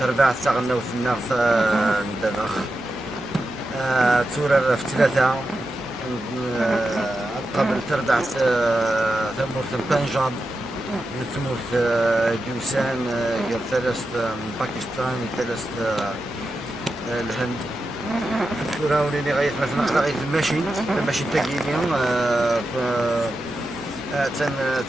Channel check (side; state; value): both; normal; correlation 0.90